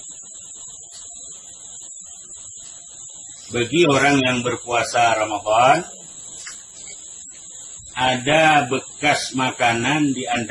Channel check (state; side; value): identical; both; correlation 1.00